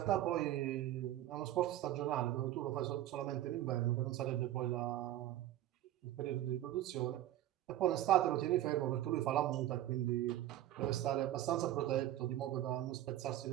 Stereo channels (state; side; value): quieter; left; 13.5 dB